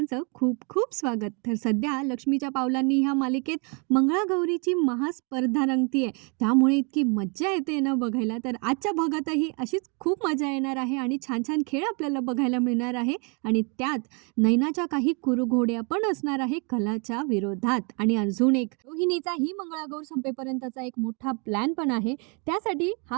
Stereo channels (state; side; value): quieter; left; 34.5 dB